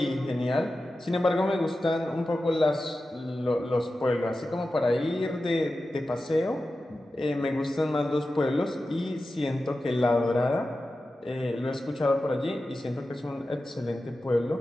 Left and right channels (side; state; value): both; normal; correlation 0.93